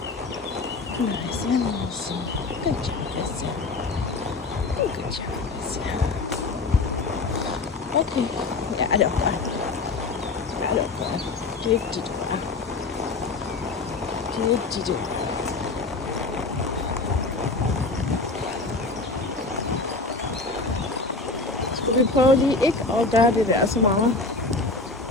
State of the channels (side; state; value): right; quieter; 3.6 dB